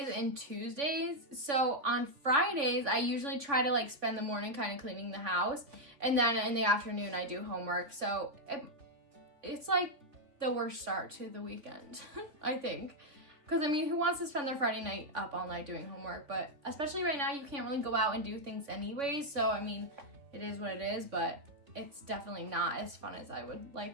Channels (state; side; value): late; left; 3.5 ms